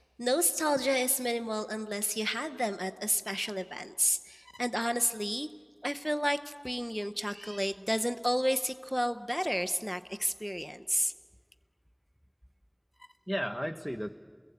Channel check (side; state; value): both; identical; correlation 1.00